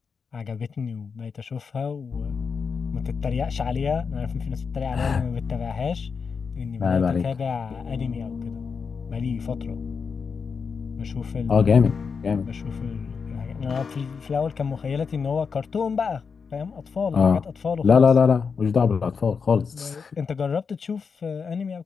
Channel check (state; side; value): quieter; right; 5.6 dB